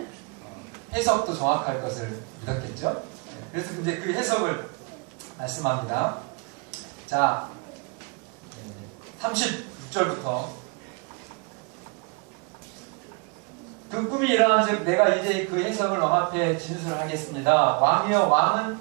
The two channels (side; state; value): left; quieter; 32.2 dB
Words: 해석도 정확할 것을 믿었겠죠. 그래서 이제 그 해석을 말씀합니다. 자, 36절부터 그 꿈이 일어난즉 내가 이제 그 해석을 왕 앞에 진술하겠습니다. 왕이여